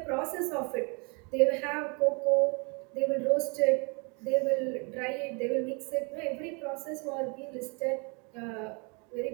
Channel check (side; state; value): left; quieter; 32.6 dB